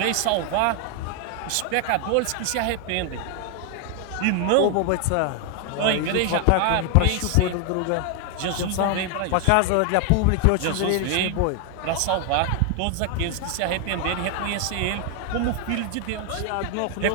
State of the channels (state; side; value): different; both; correlation 0.00